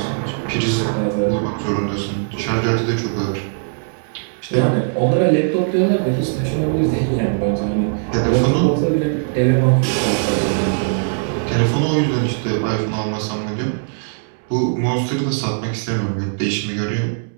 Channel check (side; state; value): left; silent; digital silence